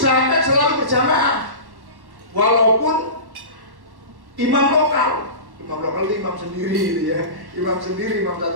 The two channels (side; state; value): left; late; 1.1 ms